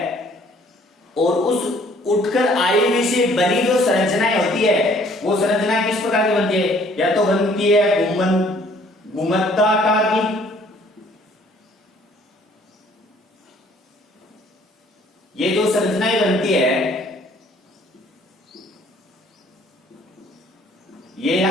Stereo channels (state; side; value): normal; both; correlation 0.59